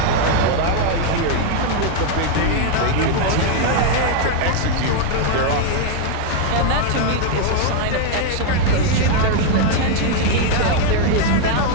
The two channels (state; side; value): different; both; correlation 0.00